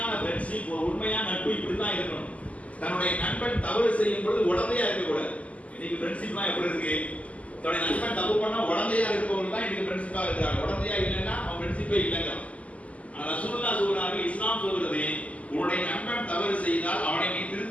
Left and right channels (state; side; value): late; right; 0.068 ms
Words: ஃப்ரெண்ட்ஷிப், ஒரு உண்மையான நட்பு இப்படிதான் இருக்கணும். தன்னுடைய நண்பன் தவறு செய்யும் பொழுது உடந்தையா இருக்கக்கூடாது. இன்னைக்கு ஃப்ரெண்ட்ஷிப்லாம் எப்படி இருக்கு? தன்னுடைய நண்பன் தப்பு பண்ணா உடந்தையா இருக்கவங்க தான் இன்னைக்கு ஃப்ரெண்ட்ஷிப்பா இருக்காங்க. உடந்தையா இல்லைன்னா அவன் ஃப்ரெண்ட்ஷிப்பே இல்லைங்க. ஆனா ரசூலுல்லாஹ் சொல்றாங்க, இஸ்லாம் சொல்றது, உன்னுடைய நண்பன் தவறு செய்தால் அவனை நீ